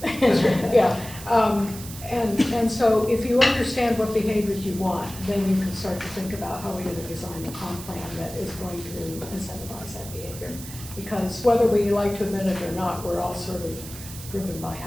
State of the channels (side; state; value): right; noise; hiss, 13 dB below the sound